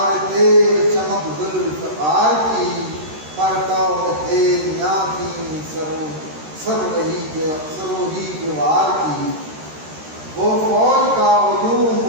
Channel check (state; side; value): late; left; 13 ms